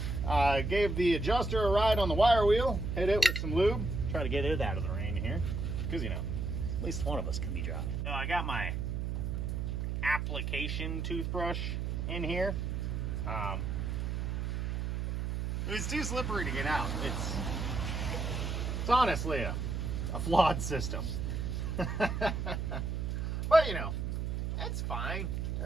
Gave the adjuster a ride on the wire wheel, hit it with some lube, try to get it out of the rain here, because, you know, at least one of us can be dry. So I got my application toothbrush in here. It was too slippery to get out. It's honestly a flawed system. But, you know, it's fine.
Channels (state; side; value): noise; right; hum, 1 dB below the sound